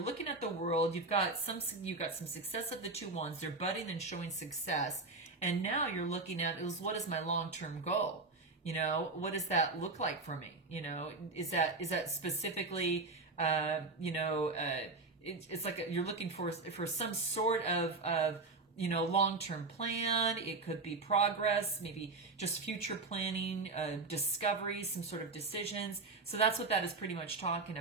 at the world. You've got some success of the two wands. They're budding and showing success. And now you're looking at, what is my long-term goal? You know, what does that look like for me? You know, is that specifically, you know, it's like you're looking for some sort of you know, long-term plan. It could be progress, maybe just future planning, discovery, some sort of decisions. So that's what that is pretty much talking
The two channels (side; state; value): left; quieter; 3.6 dB